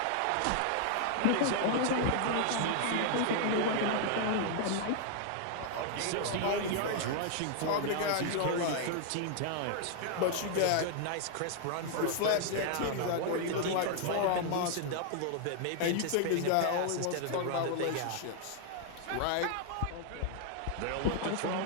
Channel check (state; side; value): different; both; correlation 0.00